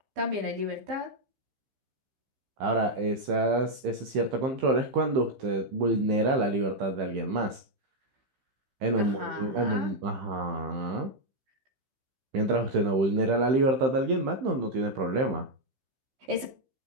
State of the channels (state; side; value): late; left; 15 ms